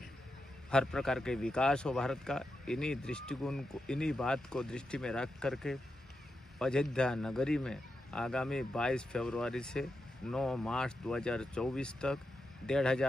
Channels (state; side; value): normal; both; correlation 0.87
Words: हर प्रकार के विकास हो भारत का। इन्हीं दृष्टिकोण को, इन्हीं बात को दृष्टि में रख करके अयोध्या नगरी में आगामी 22 फरवरी से 9 मार्च 2024 तक